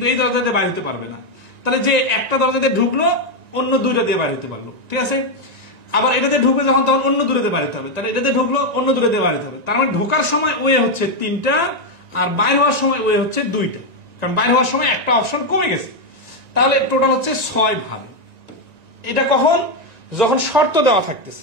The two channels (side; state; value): left; late; 1.9 ms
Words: এই দরজা দিয়ে বাইরে হতে পারবে না। তাহলে যে একটা দরজা দিয়ে ঢুকলো অন্য 2টা দিয়ে বাইরে হতে পারলো, ঠিক আছে। আবার এটাতে ঢুকবে যখন, তখন অন্য দূরে দিয়ে বাইরে হতে হবে। তাহলে এটাতে ঢুকলো, অন্য দূরে দিয়ে বাইরে হতে হবে। তার মানে ঢোকার সময় ওয়ে হচ্ছে 3টা, আর বাইরে হওয়ার সময় ওয়ে হচ্ছে 2টা, কারণ বাইরে হওয়ার সময় একটা অপশন কমে গেছে। তাহলে টোটাল হচ্ছে 6 ভাবে। এটা কখন? যখন শর্ত দেওয়া থাকতেছে।